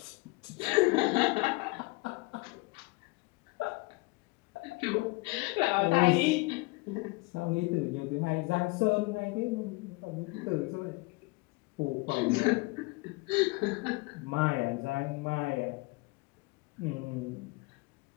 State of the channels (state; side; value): quieter; right; 25.2 dB